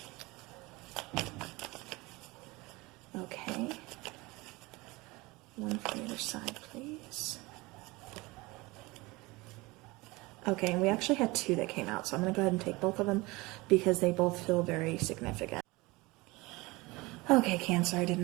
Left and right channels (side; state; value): left; quieter; 22.8 dB